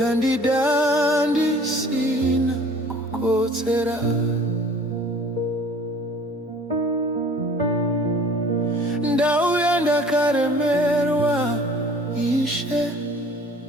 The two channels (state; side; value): normal; both; correlation 0.50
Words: ndisina kukotsera. Ndauya ndakaremerwa Ishe,